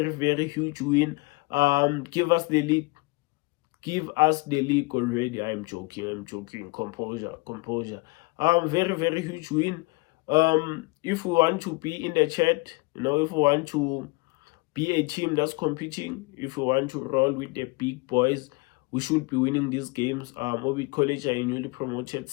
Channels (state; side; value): quieter; right; 25.7 dB